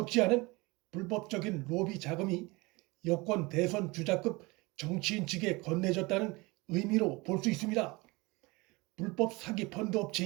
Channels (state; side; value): quieter; left; 24.3 dB